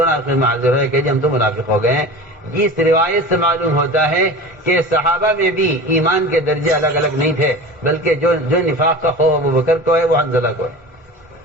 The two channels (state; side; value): normal; both; correlation 0.34